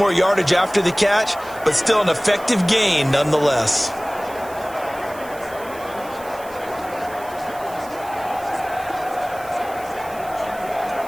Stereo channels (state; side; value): noise; right; hiss, 20 dB below the sound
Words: yardage after the catch, but still an effective gain nonetheless.